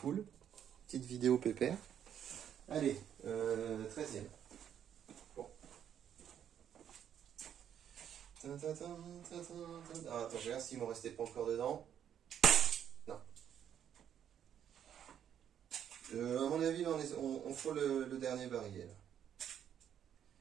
Petite vidéo pépère. Allez, 13e. Bon. Ah, attends, je regarde s'il m'en restait pas encore dedans. Non. À mon avis, on frôle le dernier barillet. Là.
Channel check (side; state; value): left; quieter; 9.4 dB